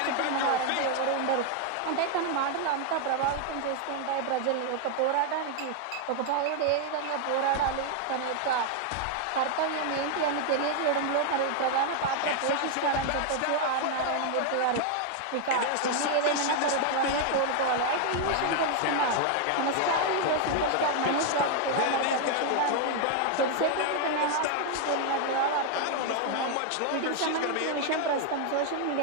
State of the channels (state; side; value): different; both; correlation 0.00